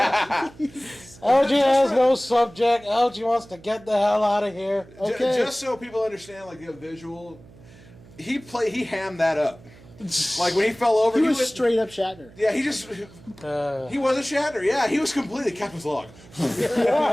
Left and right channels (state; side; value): noise; right; hum, 22 dB below the sound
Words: LG has no subject. LG wants to get the hell out of here. Okay. Just so people understand, like the visual, he hammed that up. Like when he fell over, He was went- straight up Shatner. Yeah, he wasn't Shatner. Yeah, he was completely Captain's log.